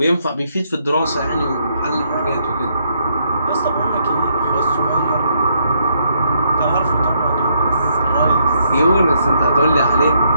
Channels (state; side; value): inverted; both; correlation -0.73